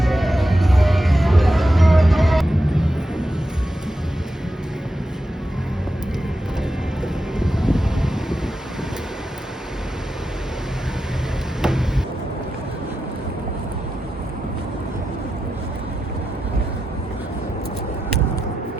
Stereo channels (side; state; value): both; normal; correlation 0.89